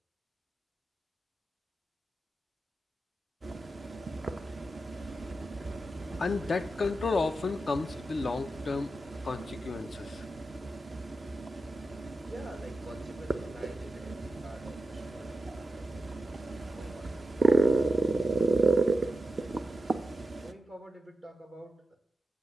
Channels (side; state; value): both; normal; correlation 0.90